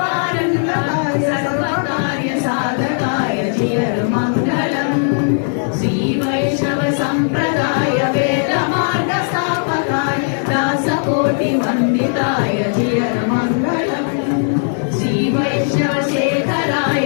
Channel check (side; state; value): right; silent; digital silence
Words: పారంగాయ సర్వకార్య సాధకాయ జియర్ మంగళం శ్రీ వైష్ణవ సంప్రదాయ వేద మార్గ స్థాపకాయ దాసకోటి వందితాయ జియర్ మంగళం శ్రీ వైష్ణవ శేఖరాయ